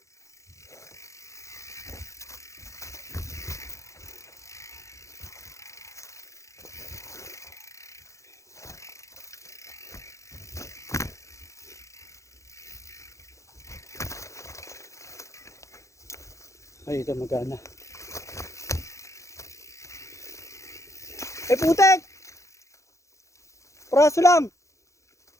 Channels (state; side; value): late; right; 0.15 ms